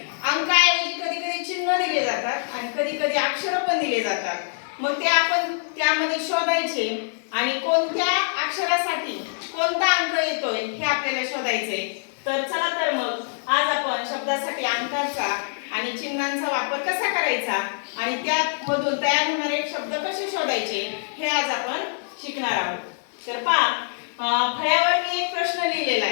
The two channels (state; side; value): silent; right; digital silence